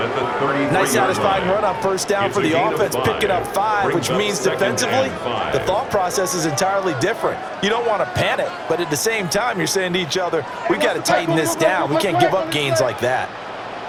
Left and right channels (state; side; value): identical; both; correlation 1.00